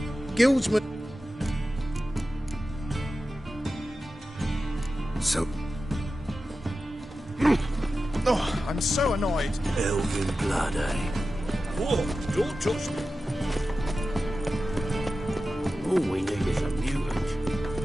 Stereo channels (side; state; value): both; normal; correlation 0.93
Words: guildsman. So, Oh, I'm so annoyed. Elven blood, eh? Whoa, don't touch me. All we need is a mutant.